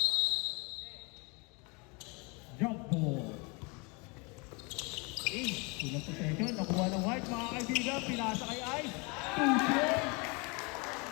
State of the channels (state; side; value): quieter; right; 29.8 dB